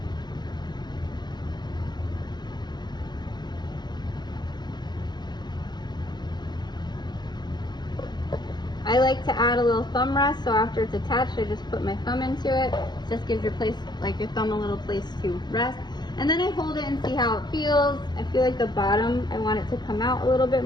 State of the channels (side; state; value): right; late; 0.21 ms